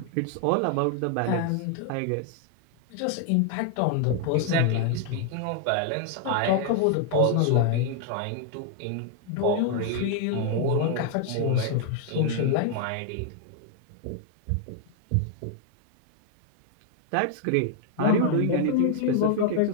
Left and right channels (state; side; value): different; both; correlation 0.00